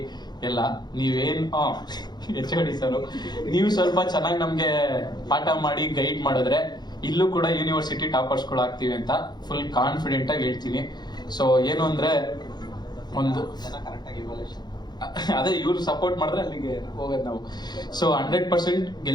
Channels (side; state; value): right; late; 0.20 ms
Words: ಎಲ್ಲ ನೀವೇನ್ HOD ಸರ್, ನೀವು ಸ್ವಲ್ಪ ಚೆನ್ನಾಗಿ ನಮ್ಗೆ ಪಾಠ ಮಾಡಿ ಗೈಡ್ ಮಾಡಿದ್ರೆ ಇಲ್ಲೂ ಕೂಡ ಯೂನಿವರ್ಸಿಟಿ ಟಾಪರ್ಸ್ ಗಳು ಆಗ್ತೀವಿ ಅಂತ ಫುಲ್ ಕಾನ್ಫಿಡೆಂಟ್ ಆಗಿ ಹೇಳ್ತೀನಿ. ಸೊ ಏನು ಅಂದ್ರೆ, ಒಂದು ಅದೇ ಇವ್ರು ಸಪೋರ್ಟ್ ಮಾಡಿದ್ರೆ ಅಲ್ಲಿಗೆ ಹೋಗೋದು ನಾವು. ಸೊ 100%